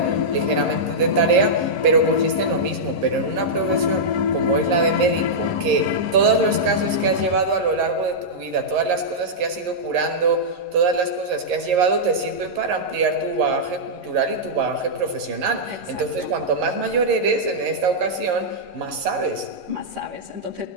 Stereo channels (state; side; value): late; left; 11 ms